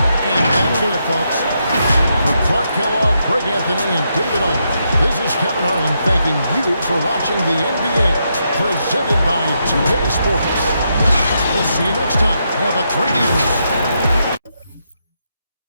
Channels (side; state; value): both; inverted; correlation -0.81